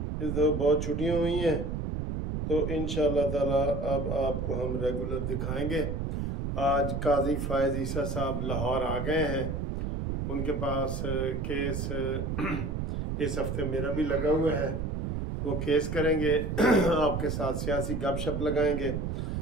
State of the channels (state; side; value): noise; right; rumble, 2 dB below the sound